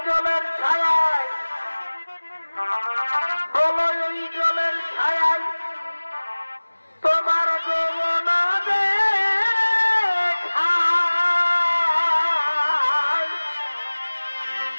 জলের ছায়ায় বলো এই জলের ছায়ায় তোমার যৌবন দেখায়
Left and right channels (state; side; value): inverted; both; correlation -1.00